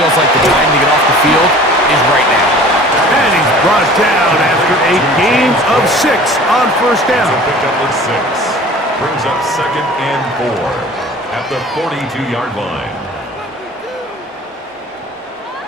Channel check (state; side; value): normal; both; correlation 0.45